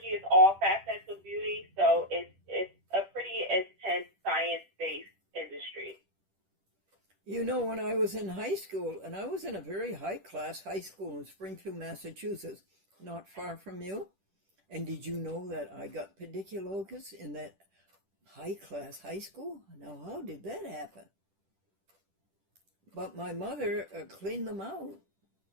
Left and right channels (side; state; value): left; late; 10 ms